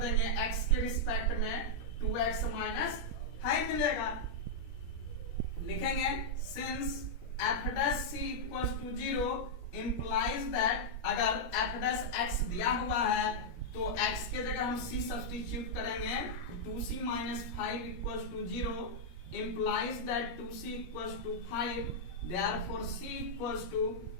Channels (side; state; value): right; late; 17 ms